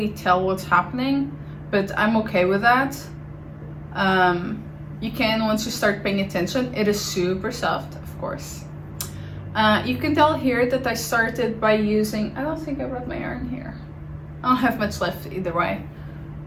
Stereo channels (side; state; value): both; identical; correlation 1.00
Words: tell what's happening, but I'm okay with that. You can once you start paying attention. It is super soft, of course. You can tell here that I started by using, I don't think I brought my yarn here. I don't have much left either way,